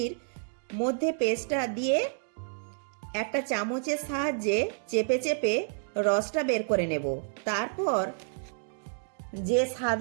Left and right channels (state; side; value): silent; left; digital silence